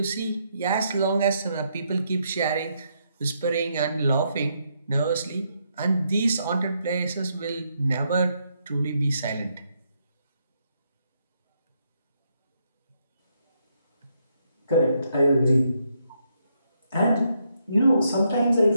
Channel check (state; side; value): inverted; both; correlation -0.77